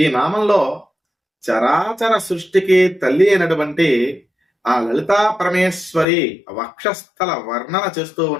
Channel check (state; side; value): drops out; right; at 6.1 s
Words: ఈ నామంలో చరాచర సృష్టికి తల్లి అయినటువంటి ఆ లలితా పరమేశ్వరి వక్షస్థల వర్ణన చేస్తూ